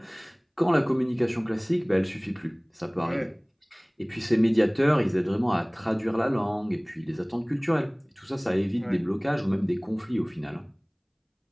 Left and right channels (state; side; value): identical; both; correlation 1.00